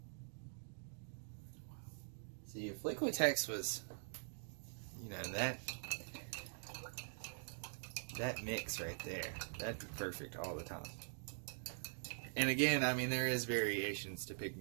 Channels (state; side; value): silent; left; digital silence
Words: See, if Liquitex was, you know, that mix right there, that'd be perfect all the time. And again, I mean, there is variations to